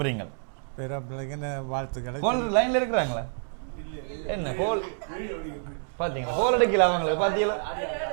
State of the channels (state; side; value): silent; left; digital silence